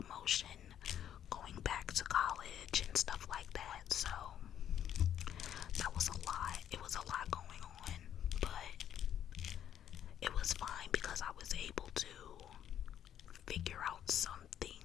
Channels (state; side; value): quieter; right; 10.1 dB